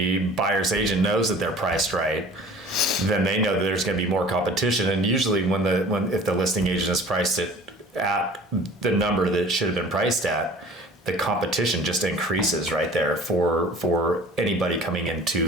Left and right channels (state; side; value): normal; both; correlation 0.45